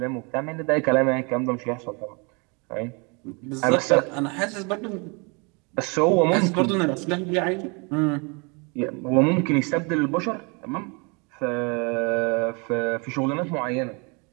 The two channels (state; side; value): quieter; left; 31.6 dB